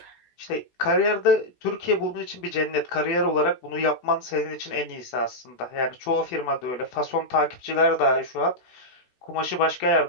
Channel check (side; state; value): right; late; 16 ms